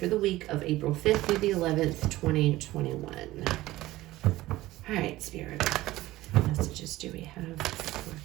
the week of April 5th through the 11th, 2021. All right, Spirit, what messages do we have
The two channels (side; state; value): left; quieter; 17.1 dB